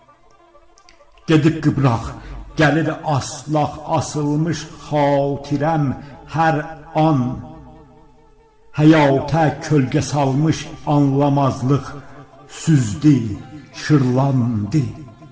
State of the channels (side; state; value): both; identical; correlation 1.00